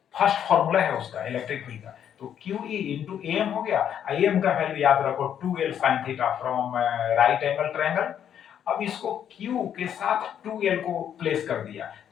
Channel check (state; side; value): quieter; right; 9.3 dB